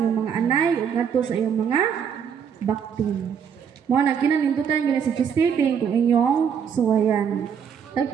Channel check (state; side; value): quieter; left; 7.5 dB